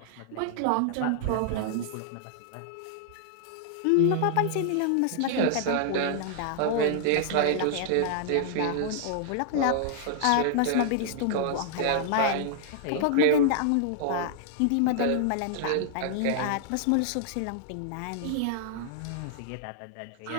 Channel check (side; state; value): both; different; correlation -0.01